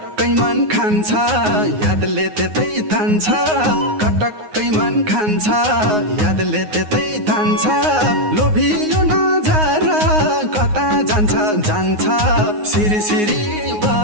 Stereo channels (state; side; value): late; left; 9.5 ms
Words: कटक्कै मन खान्छ यादले त्यतै तान्छ कटक्कै मन खान्छ यादले त्यतै तान्छ लोभियो नजर कता जान्छ जान्छ सिरी सिरी